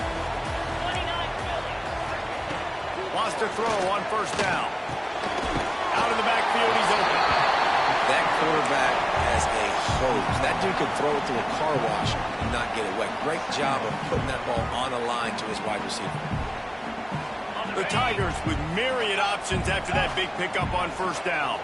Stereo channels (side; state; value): both; identical; correlation 1.00